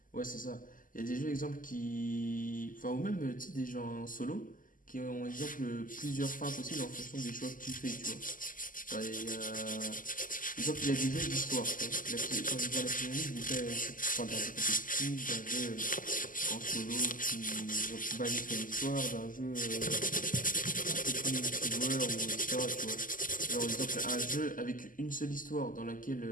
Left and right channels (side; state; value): right; late; 0.39 ms